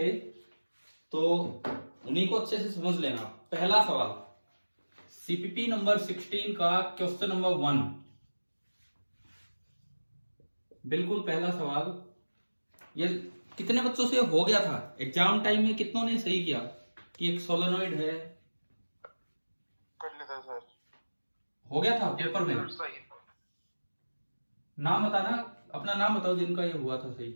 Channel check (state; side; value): inverted; both; correlation -1.00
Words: तो उन्हीं को अच्छे से समझ लेना। पहला सवाल सीपीपी नंबर 16 का क्वेश्चन नंबर 1, बिल्कुल पहला सवाल। ये कितने बच्चों से हो गया था एग्जाम टाइम में? कितनों ने सही किया कि एक सोलेनोइड है? कर लेता सर। हो गया था पेपर में? सही। नाम बताना, अपना नाम बताओ जिनका ये हुआ था सही।